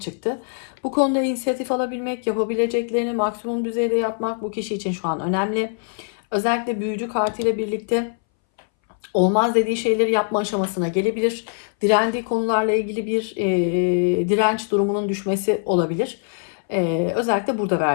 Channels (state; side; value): silent; right; 61 dB below the other